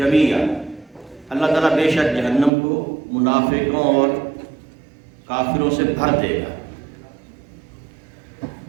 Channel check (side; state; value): left; drops out; at 2.5 s